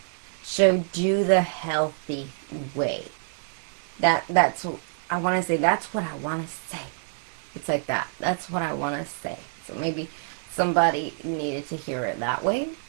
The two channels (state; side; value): silent; left; digital silence